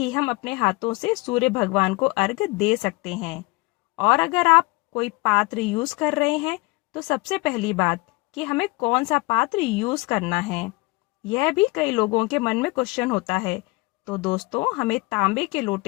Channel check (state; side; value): quieter; right; 24.4 dB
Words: हम अपने हाथों से सूर्य भगवान को अर्घ्य दे सकते हैं। और अगर आप कोई पात्र यूज कर रहे हैं तो सबसे पहली बात कि हमें कौन सा पात्र यूज करना है, यह भी कई लोगों के मन में क्वेश्चन होता है। तो दोस्तों, हमें तांबे के